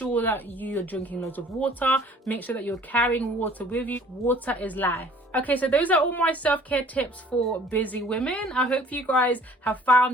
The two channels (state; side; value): normal; both; correlation 0.53